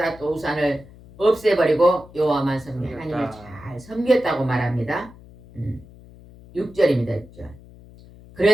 우산을 없애버리고 여호와만 섬겨 하나님을 잘 섬겼다고 말합니다. 6절입니다. 6절.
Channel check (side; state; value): left; noise; hum, 21 dB below the sound